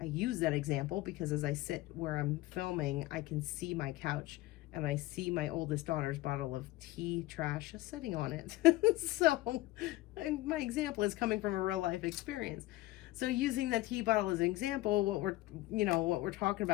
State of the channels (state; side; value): quieter; right; 18.0 dB